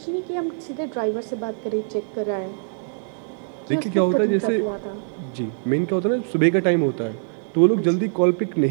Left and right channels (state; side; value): silent; left; digital silence